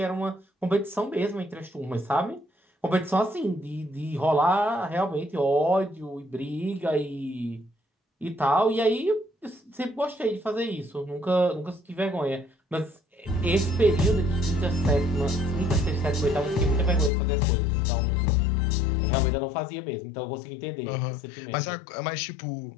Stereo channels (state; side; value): drops out; right; at 17.1 s